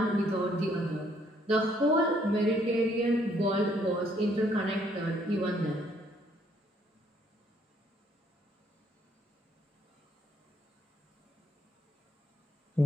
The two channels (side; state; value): both; normal; correlation 0.67